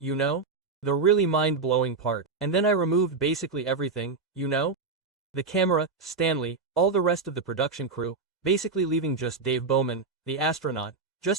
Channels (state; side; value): quieter; left; 4.4 dB